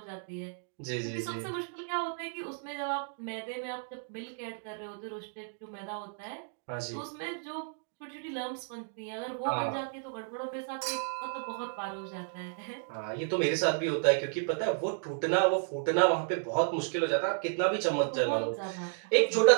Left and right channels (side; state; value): left; silent; digital silence